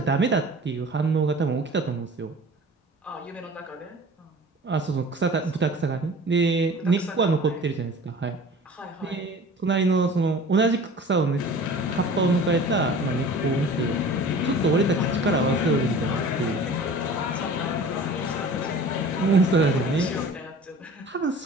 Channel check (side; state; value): both; normal; correlation 0.43